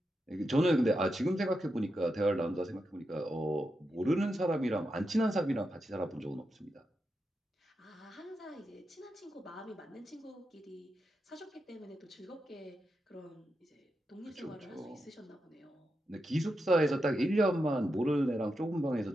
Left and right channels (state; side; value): normal; both; correlation 0.87